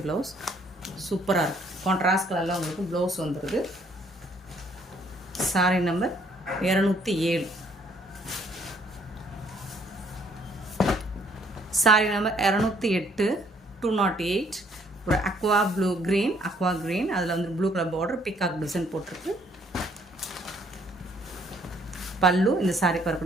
ப்ளவுஸ். சூப்பராக இருக்குது. கான்ட்ராஸ்ட் கலரில் உங்களுக்கு ப்ளவுஸ் வந்துடுது. சாரீ நம்பர் 207. சாரீ நம்பர் 208, 208. ஒரு அக்வா க்ரீன், அதில் வந்து blue colour border, peacock design போட்டிருக்கு. பல்லு, இந்த சாரீக்கு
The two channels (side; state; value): both; normal; correlation 0.64